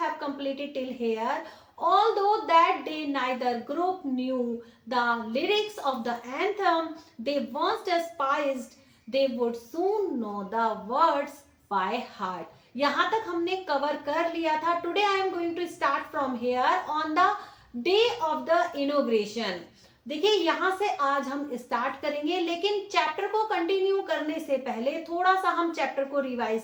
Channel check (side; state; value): both; identical; correlation 1.00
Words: completed till here. Although that day neither group knew the lyrics of the anthem they once despised, they would soon know the words by heart. यहाँ तक हमने cover कर लिया था. Today I am going to start from here on the day of the inauguration. देखिए यहां से आज हम स्टार्ट करेंगे, लेकिन चैप्टर को कंटिन्यू करने से पहले थोड़ा सा हम चैप्टर को